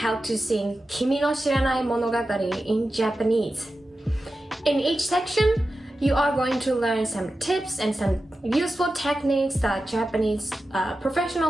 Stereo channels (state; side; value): normal; both; correlation 0.93